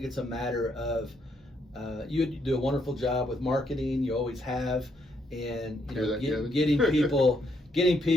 it's a matter of you do a wonderful job with marketing. You always have, and getting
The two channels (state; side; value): normal; both; correlation 0.74